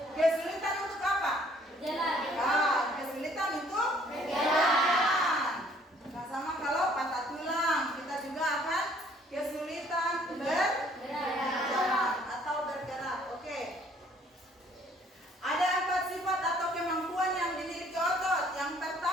Kesulitan untuk apa? Kesulitan untuk berjalan. Nah, sama kalau patah tulang, kita juga akan kesulitan berjalan atau bergerak. Oke. Ada 4 sifat atau kemampuan yang dimiliki otot. Yang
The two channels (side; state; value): both; normal; correlation 0.60